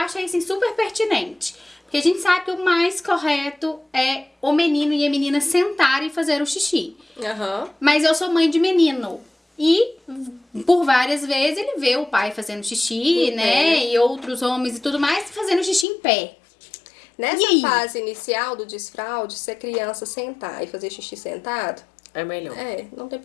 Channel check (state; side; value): drops out; right; at 15.9 s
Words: assim, super pertinente. Porque a gente sabe que o mais correto é o menino e a menina sentarem e fazer o xixi. Mas eu sou mãe de menino. E, por várias vezes, ele vê o pai fazendo xixi, né? E outros homens e tudo mais fazendo xixi em pé. Nessa fase inicial do desfraude, se a criança sentar e fazer xixi sentado, É melhor. não tem